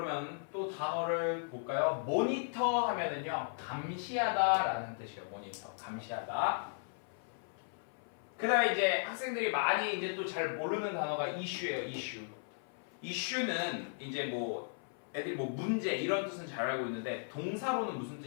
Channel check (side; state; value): right; silent; 54 dB below the other